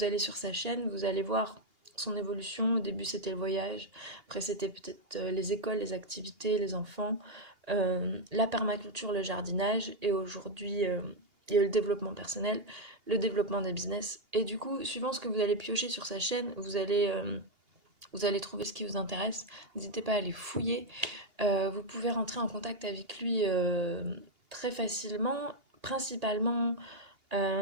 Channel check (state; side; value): late; left; 2.8 ms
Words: allez sur sa chaîne, vous allez voir son évolution. Au début, c'était le voyage, après, c'était peut-être les écoles, les activités, les enfants, la permaculture, le jardinage, et aujourd'hui, il y a le développement personnel, le développement des business. Et du coup, suivant ce que vous allez piocher sur sa chaîne, vous allez trouver ce qui vous intéresse. N'hésitez pas à aller fouiller. Vous pouvez rentrer en contact avec lui très facilement, principalement